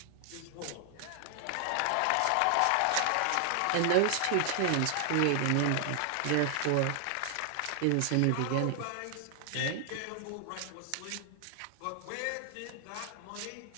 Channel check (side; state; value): both; different; correlation 0.00